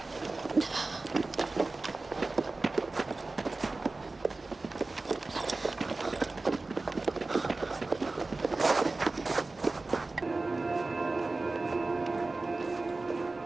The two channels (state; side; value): quieter; left; 3.4 dB